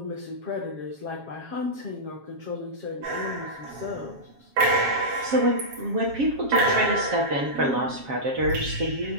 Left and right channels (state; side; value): late; left; 7.3 ms